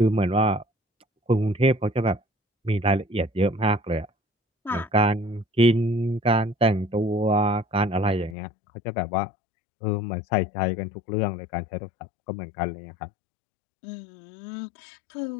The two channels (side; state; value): right; drops out; at 8.3 s